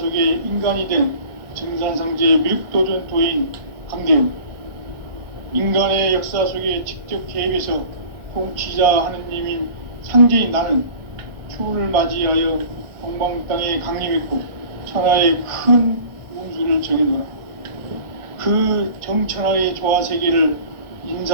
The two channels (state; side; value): late; left; 1.1 ms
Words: 인간이 된 증산상제 미륵도전 도인 강대우, 인간의 역사 속에 직접 개입해서 통치자 하느님인 상제인 나는 추운을 맞이하여 동방 땅에 강림했고 천하의 큰 운수를 정해놓아 그 정천하의 조화 세계를